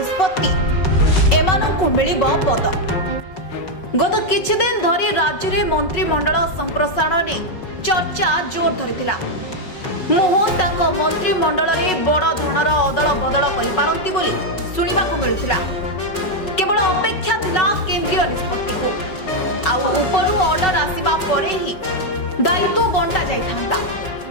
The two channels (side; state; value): right; late; 5.5 ms